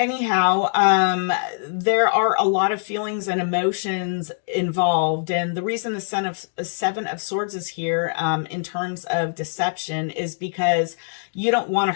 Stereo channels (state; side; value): silent; right; digital silence